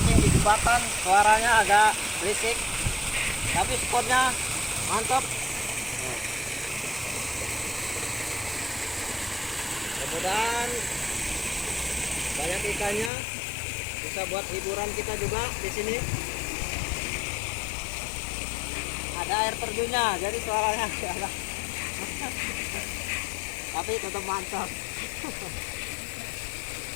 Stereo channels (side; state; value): right; drops out; at 13.1 s